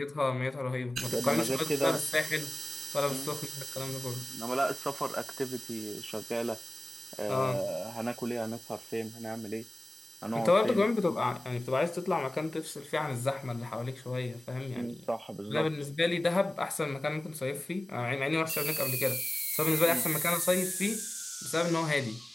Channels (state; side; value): normal; both; correlation 0.97